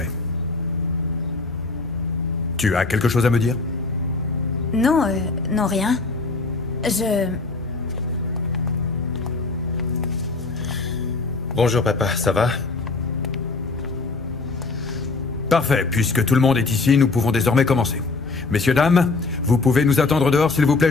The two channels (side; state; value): right; quieter; 3.8 dB